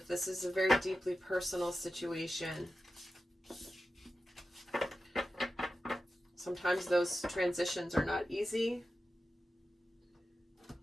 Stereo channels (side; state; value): both; normal; correlation 0.92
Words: this is a very deeply personal situation, sometimes those transitions are not easy.